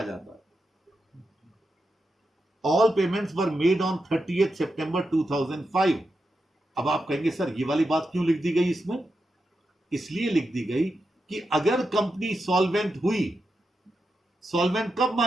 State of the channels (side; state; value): both; normal; correlation 0.87